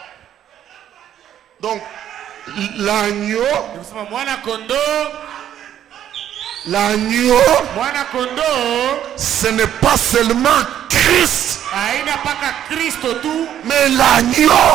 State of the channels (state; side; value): quieter; left; 10.7 dB